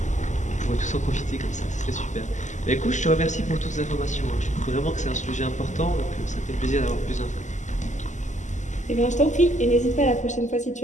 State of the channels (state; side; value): late; right; 0.35 ms